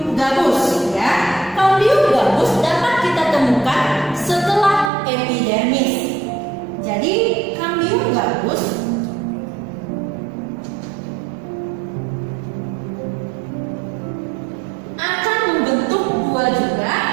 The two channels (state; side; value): drops out; left; at 4.9 s